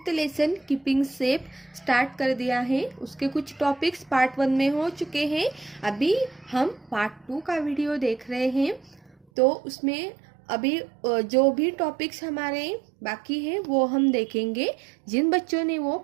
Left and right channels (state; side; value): drops out; left; at 9.2 s